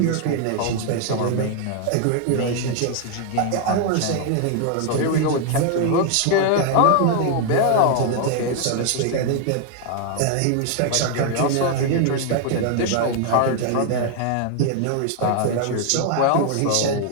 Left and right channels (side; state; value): both; different; correlation 0.00